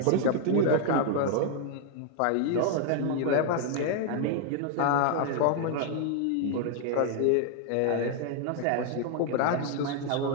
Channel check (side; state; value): both; different; correlation 0.00